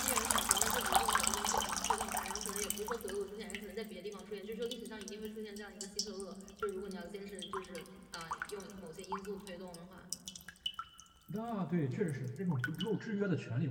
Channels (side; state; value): both; identical; correlation 1.00